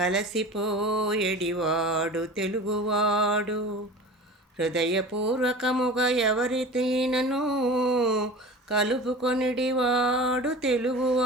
తెలుగువాడు. హృదయపూర్వకముగా ఎవరితోనైనను కలుపుకొనిడివాడు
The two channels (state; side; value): normal; both; correlation 0.37